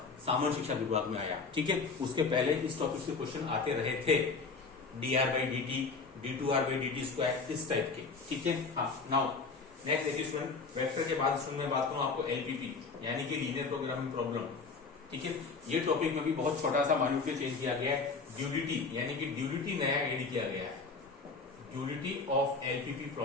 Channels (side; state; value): right; quieter; 4.4 dB